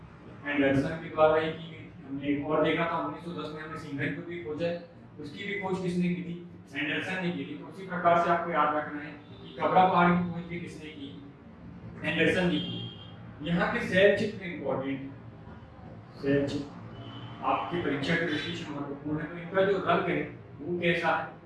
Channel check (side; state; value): both; identical; correlation 1.00